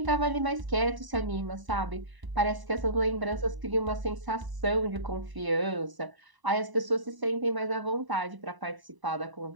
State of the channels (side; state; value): left; late; 1.0 ms